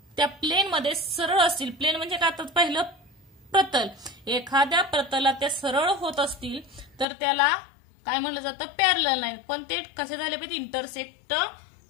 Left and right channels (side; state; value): right; drops out; at 7.1 s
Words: त्या प्लेन मध्ये सरळ असतील. प्लेन म्हणजे काय, तर पहिलं प्रतल, एखाद्या प्रतलात त्या सरळ होत असतील तर त्याला काय म्हणलं जातं, पॅरलल लाईन. पण ते कसे झाले पाहिजे, इंटरसेक्ट